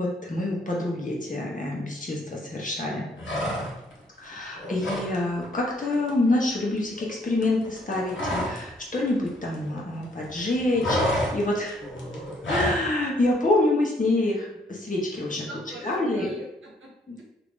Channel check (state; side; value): normal; both; correlation 0.66